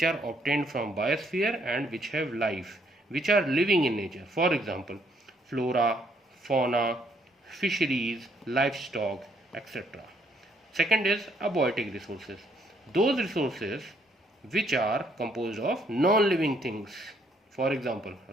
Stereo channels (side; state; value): both; normal; correlation 0.69